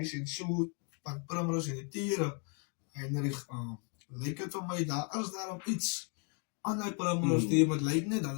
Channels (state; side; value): quieter; right; 38.6 dB